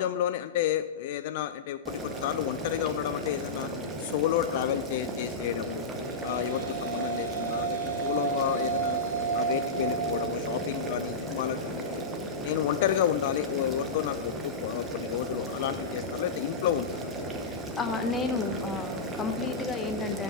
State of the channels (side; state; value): right; quieter; 3.9 dB